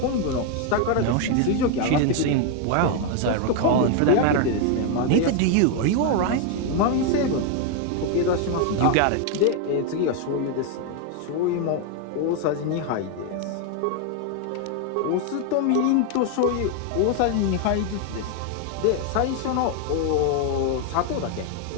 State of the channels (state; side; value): different; both; correlation 0.01